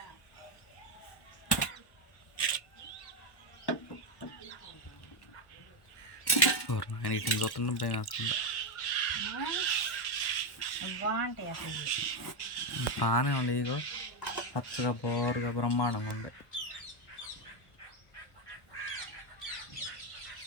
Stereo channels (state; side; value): late; right; 1.0 ms